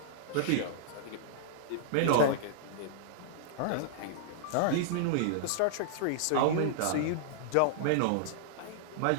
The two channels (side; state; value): both; different; correlation -0.01